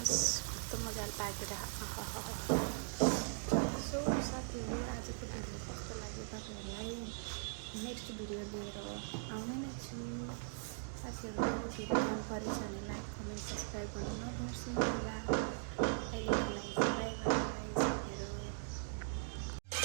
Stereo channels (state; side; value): silent; left; digital silence